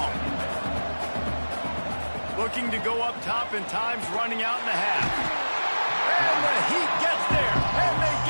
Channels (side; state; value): both; inverted; correlation -1.00